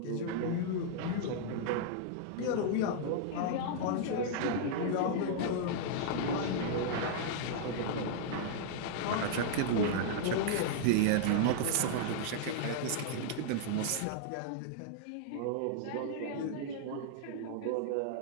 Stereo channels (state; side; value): different; both; correlation -0.01